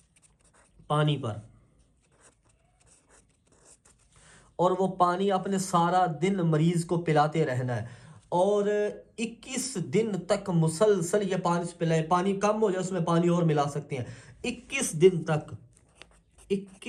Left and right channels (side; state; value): both; identical; correlation 1.00